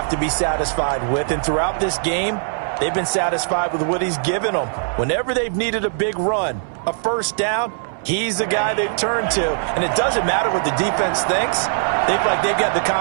to be satisfied with. And throughout this game, they've been satisfied with what he's given them. Whenever they've needed a big run, a first down, he's the guy they've turned to. And it doesn't matter what the defense thinks. They feel like they've got the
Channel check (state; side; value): silent; left; 64 dB below the other